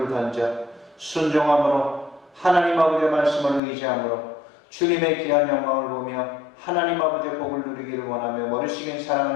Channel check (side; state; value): right; drops out; at 3.6 s